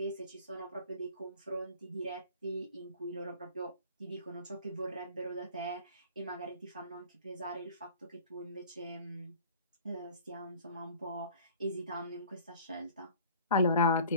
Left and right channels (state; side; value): inverted; both; correlation -0.47